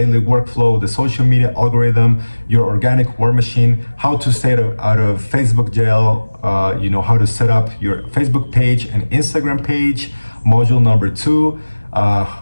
workflow, the social media algorithm, your organic war machine, how to stay out of Facebook jail, how to set up your Facebook page and Instagram page, module number 2,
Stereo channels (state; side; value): inverted; both; correlation -1.00